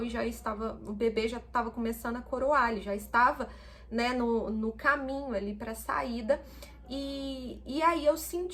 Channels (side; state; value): both; identical; correlation 1.00